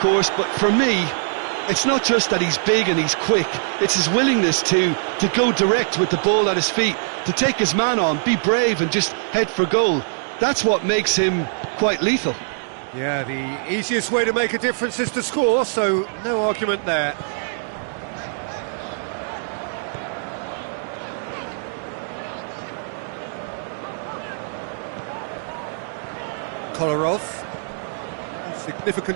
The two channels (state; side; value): silent; left; digital silence